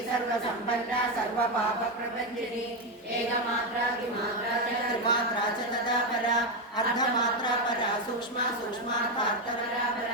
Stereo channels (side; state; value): both; normal; correlation 0.08